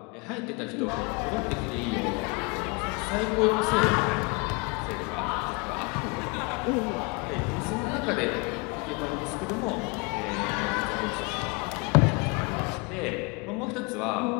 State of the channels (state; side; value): quieter; right; 29.4 dB